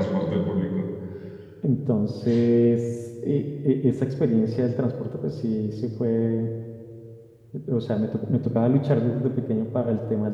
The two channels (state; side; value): identical; both; correlation 1.00